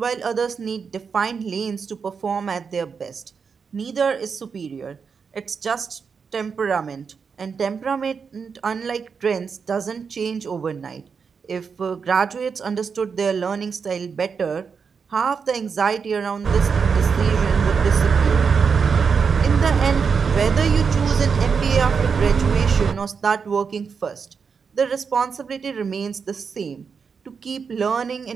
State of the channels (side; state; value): left; quieter; 5.9 dB